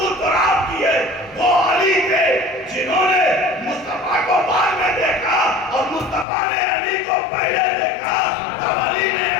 تراب کی ہے، وہ علی تھے جنہوں نے مصطفیٰ کو بعد میں دیکھا اور مصطفیٰ نے علی کو پہلے دیکھا۔ اب علی نے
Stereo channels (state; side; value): drops out; right; at 6.2 s